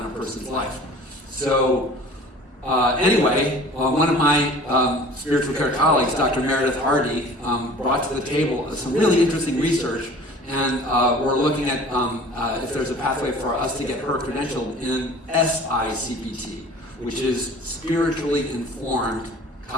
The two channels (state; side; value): normal; both; correlation 0.45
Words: a person's life. So anyway, one of my spiritual care colleagues, Dr. Meredith Hardy, brought to the table some really interesting research, and we're looking at if there's a pathway for us to get her credentialed in SICPT, which is Spiritually Informed